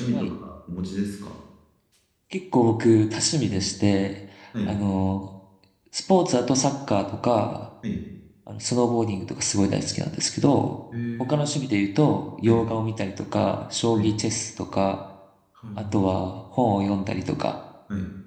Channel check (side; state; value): both; identical; correlation 1.00